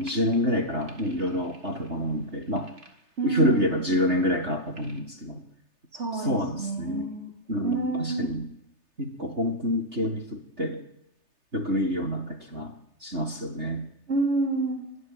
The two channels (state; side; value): late; left; 3.3 ms